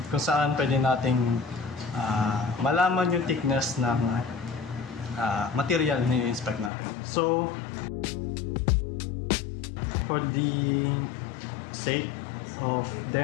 kung saan pwede nating malaman yung thickness ng material na i-inspect natin. So for the sake of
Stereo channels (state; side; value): drops out; right; at 6.7 s